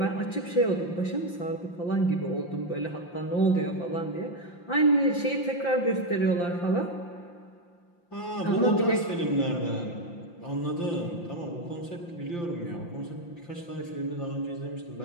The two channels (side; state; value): right; late; 5.8 ms